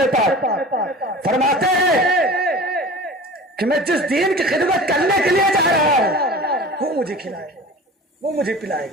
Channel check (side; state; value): both; normal; correlation 0.38